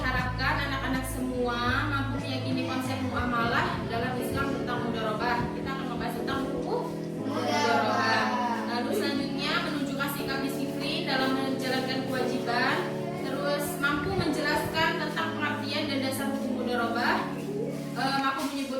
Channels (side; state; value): both; identical; correlation 1.00